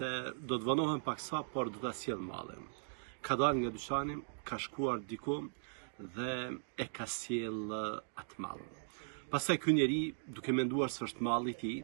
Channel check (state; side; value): silent; left; digital silence